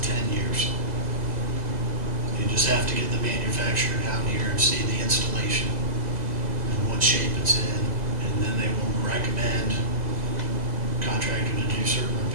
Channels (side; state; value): left; late; 2.0 ms